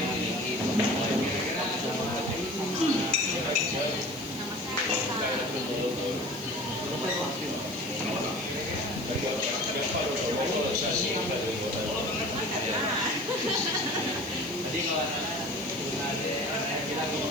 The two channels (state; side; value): noise; right; hiss, 16 dB below the sound